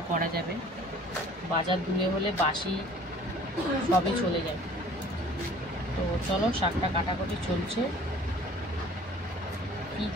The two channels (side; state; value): both; normal; correlation 0.51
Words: করা যাবে, বাজার দূরে হলে বাসি সবই চলে যায়। তো চলো শাকটা কাটাকাটি চলছে, কি